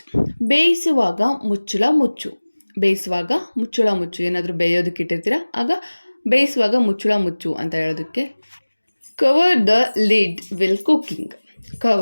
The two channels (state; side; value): inverted; both; correlation -1.00